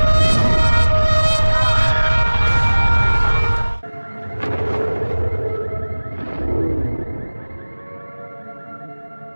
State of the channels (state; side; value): inverted; both; correlation -1.00